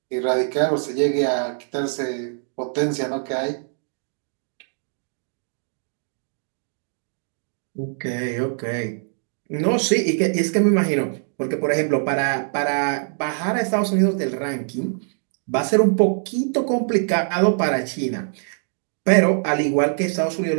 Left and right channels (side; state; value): left; silent; digital silence